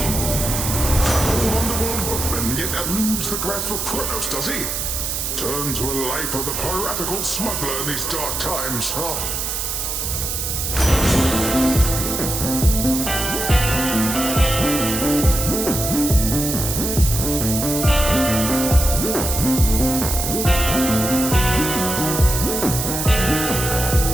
Yet eludes the grasp of Kronos, does he? Turn to a life of the piratical smuggler in these dark times, huh?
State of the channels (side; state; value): right; noise; hiss, 2 dB below the sound